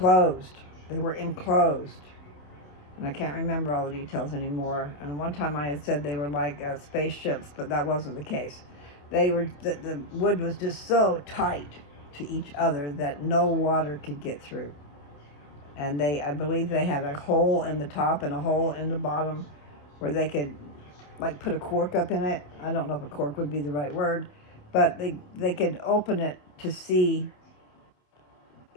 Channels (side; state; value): right; late; 28 ms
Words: They were enclosed. And I can't remember all the details anymore. And one time I had said they were like spaceships, but that wasn't the case. They were, the wood was just so tight to each other that no water could get through. And I believe they had a hole in the top and a hole in the bottom where they could like put a cork up in it. I don't know if a cork would be the right word, but they could open it to see